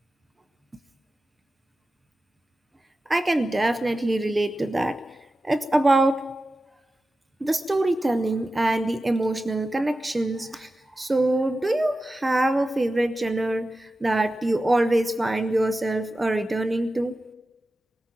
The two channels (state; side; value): normal; both; correlation 0.93